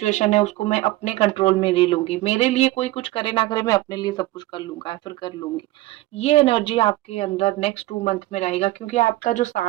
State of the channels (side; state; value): left; quieter; 17.8 dB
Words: है उसको मैं अपने कंट्रोल में ले लूंगी, मेरे लिए कोई कुछ करे ना करे, मैं अपने लिए सब कुछ कर लूंगा या फिर कर लूंगी। ये एनर्जी आपके अंदर नेक्स्ट 2 मंथ में रहेगा, क्योंकि आपका जो